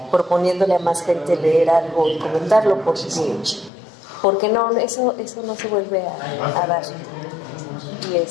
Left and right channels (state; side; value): drops out; right; at 3.7 s